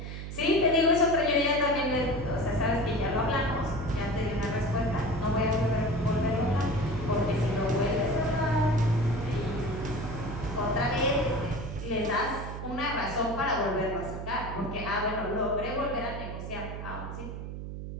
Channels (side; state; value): right; noise; hum, 8 dB below the sound